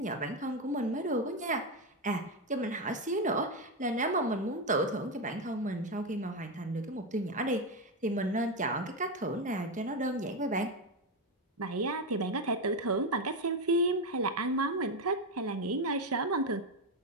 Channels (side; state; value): both; normal; correlation 0.10